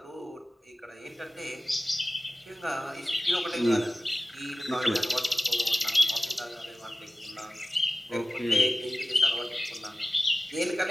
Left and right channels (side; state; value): both; normal; correlation 0.94